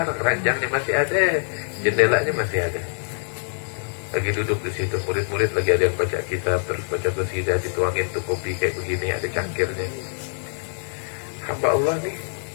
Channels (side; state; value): right; silent; 63 dB below the other